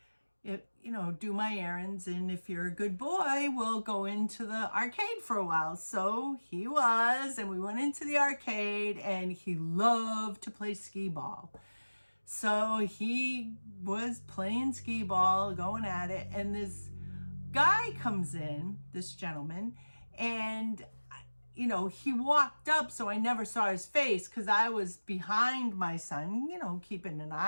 do my errands, and if you're a good boy, we'll go into the arcade for a while. So he was, and we went into the arcade, and he loved to play skee ball. So he was playing skee ball, going at it, and this guy comes in, this gentleman, and he walked up, so I never saw his face because I was behind my son, keeping an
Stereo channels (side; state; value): both; inverted; correlation -1.00